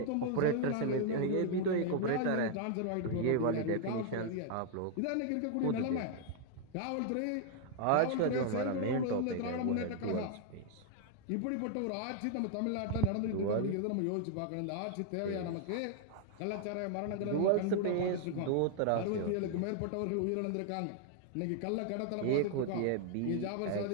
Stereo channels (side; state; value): both; different; correlation 0.00